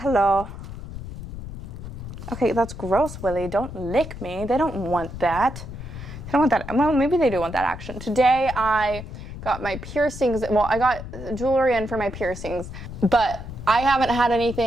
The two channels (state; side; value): noise; left; rumble, 10 dB below the sound